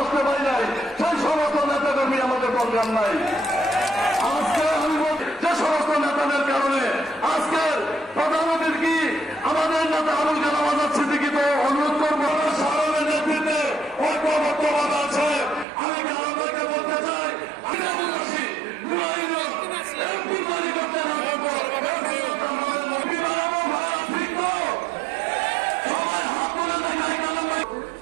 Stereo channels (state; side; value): drops out; left; at 15.7 s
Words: আসতে পারি নাই সেই সমস্ত নেতা কর্মী আমাদের দরকার নাই। আজকে আমি যে সমস্ত নেতাদের কারণে আজকের প্রধানমন্ত্রীর কি আমাদের নেতা আবুল কালাম আজাদ সিদ্দিকীকে অনুরোধ করবো সাধারণের নেতৃত্বে ঐক্যবদ্ধভাবে আছে। আমি কালামকে বলতে চাই